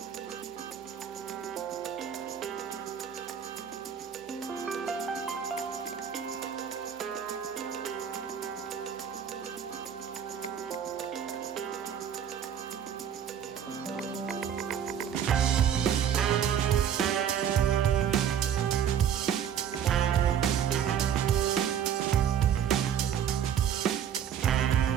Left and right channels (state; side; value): quieter; left; 8.9 dB